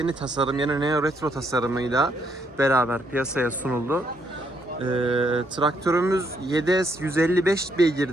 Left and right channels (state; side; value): normal; both; correlation 0.73